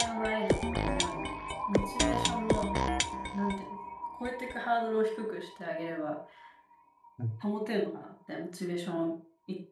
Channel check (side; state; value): both; identical; correlation 1.00